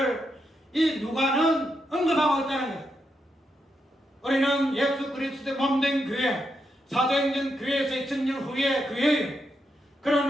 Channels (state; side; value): normal; both; correlation 0.83